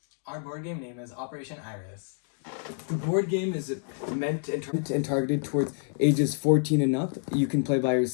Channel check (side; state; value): right; silent; 59 dB below the other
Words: Our board game name is Operation Iris. The board game is meant and targeted towards ages 14 and up. You can play by